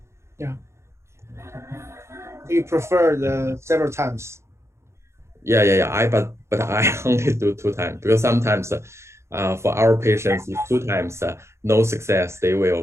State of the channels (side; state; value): left; late; 0.13 ms